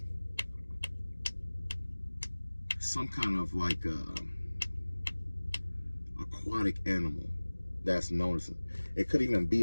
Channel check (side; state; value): both; inverted; correlation -1.00